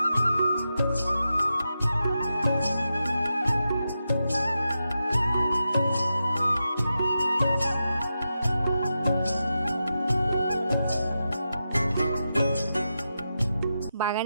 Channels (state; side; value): inverted; both; correlation -0.89